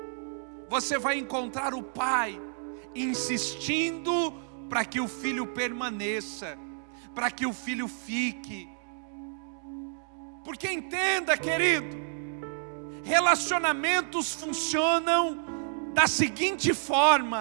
você vai encontrar o pai insistindo para que o filho permaneça, para que o filho fique. Porque entenda, querido, relacionamentos funcionam da seguinte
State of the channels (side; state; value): left; silent; 58 dB below the other